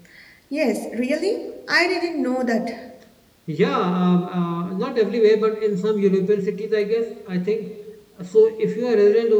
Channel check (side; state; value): both; identical; correlation 1.00